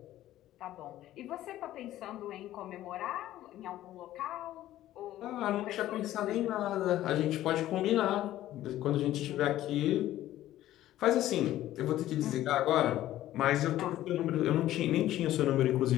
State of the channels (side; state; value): right; quieter; 13.9 dB